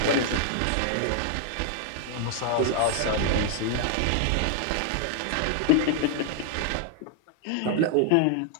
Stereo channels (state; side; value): different; both; correlation 0.00